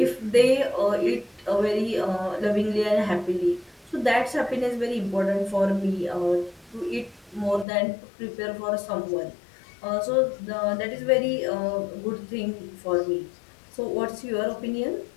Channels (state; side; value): drops out; right; at 7.7 s